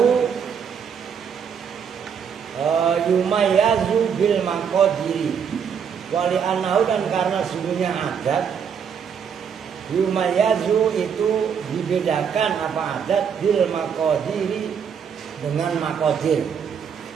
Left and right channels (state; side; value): quieter; left; 7.3 dB